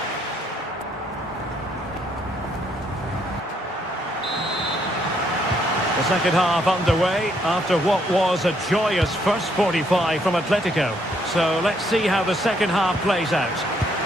The second half underway after what was a joyous first 45 from Atletico. So let's see how the second half plays out.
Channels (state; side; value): normal; both; correlation 0.71